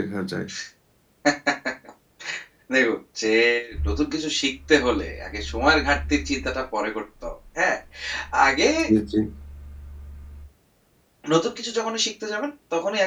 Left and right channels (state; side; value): identical; both; correlation 1.00